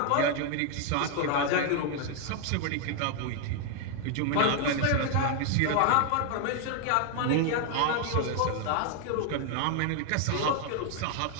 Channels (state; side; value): different; both; correlation 0.00